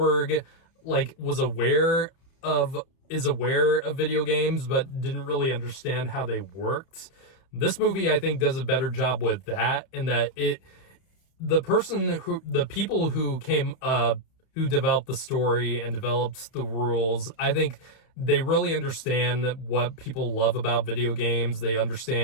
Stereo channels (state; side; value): late; right; 31 ms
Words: was aware of video games, but didn't really understand how they worked. This movie, I think, does a better job with that, in that the people who developed the story and developed the rules, I think they really understand what people love about video games. They